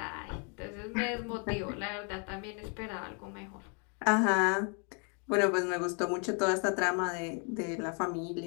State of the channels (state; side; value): quieter; right; 38.2 dB